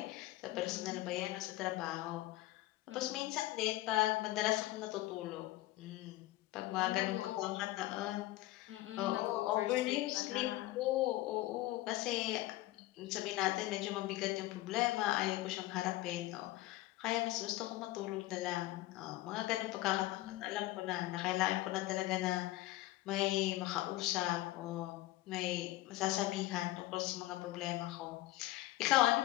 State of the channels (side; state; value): right; quieter; 17.0 dB